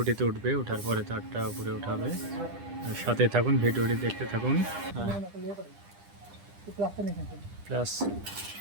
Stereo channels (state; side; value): late; left; 9.9 ms